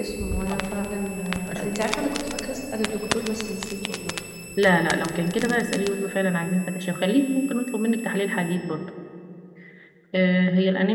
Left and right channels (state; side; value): identical; both; correlation 1.00